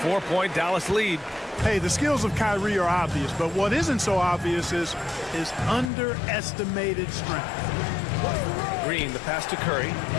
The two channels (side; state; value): right; drops out; at 5.9 s